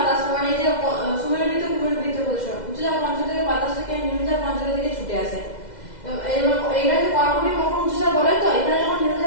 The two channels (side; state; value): right; late; 2.0 ms